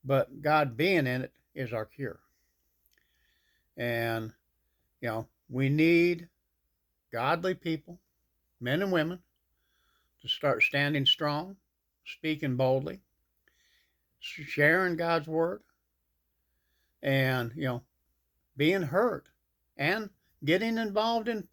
but God being in it is our cure. And, we need godly people, men and women, to start standing strong, speaking boldly, sharing God's word, and, being heard, and getting involved in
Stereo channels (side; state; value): both; identical; correlation 1.00